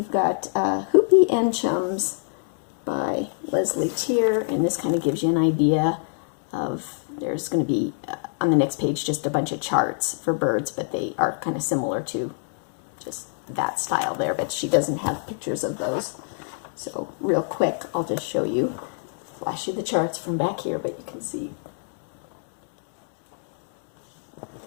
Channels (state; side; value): silent; right; digital silence